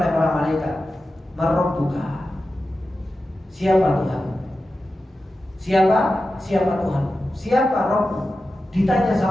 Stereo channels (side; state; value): both; normal; correlation 0.92